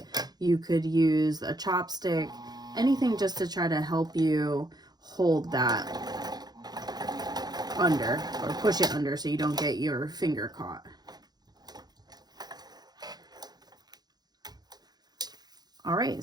you could use a chopstick, anything just to try to help you hold that under or push it under so you don't get your finger caught. All right,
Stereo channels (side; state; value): left; late; 0.19 ms